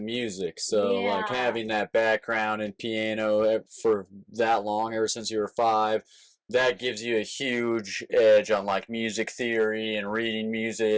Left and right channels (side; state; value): both; identical; correlation 1.00